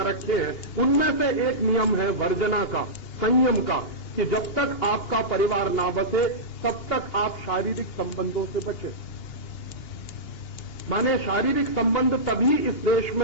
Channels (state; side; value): late; right; 2.8 ms